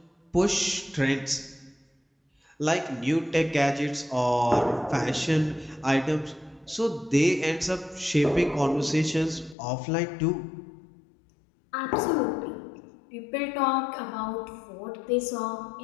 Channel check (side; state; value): right; drops out; at 9.6 s